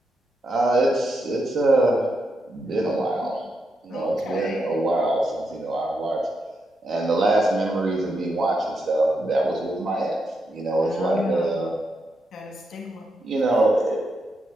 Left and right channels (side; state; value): both; normal; correlation 0.83